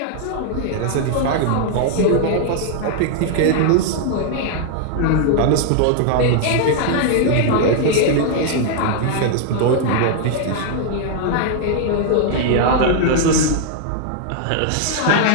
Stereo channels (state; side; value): different; both; correlation -0.01